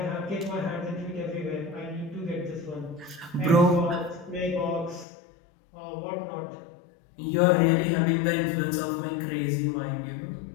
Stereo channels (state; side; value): drops out; right; at 5.1 s